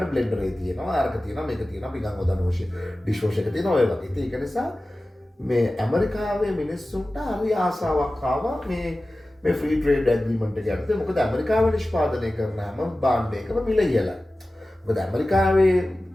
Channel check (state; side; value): normal; both; correlation 0.96